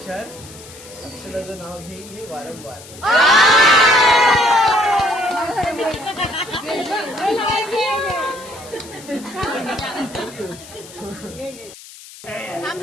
अक्षराचं नाव घेईल वारंवार. थांब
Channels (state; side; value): noise; left; hiss, 18 dB below the sound